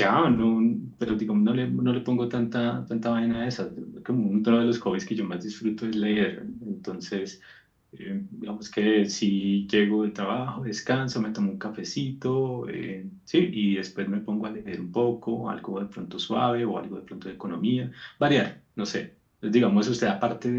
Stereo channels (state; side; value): identical; both; correlation 1.00